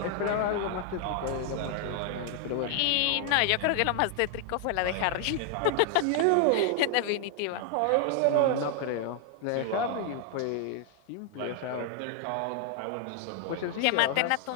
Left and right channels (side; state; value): both; different; correlation 0.00